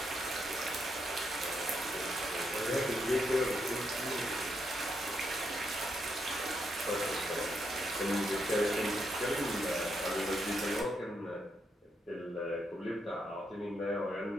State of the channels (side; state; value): both; normal; correlation 0.79